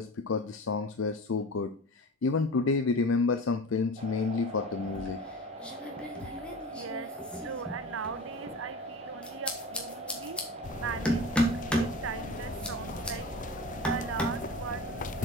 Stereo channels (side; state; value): both; normal; correlation 0.32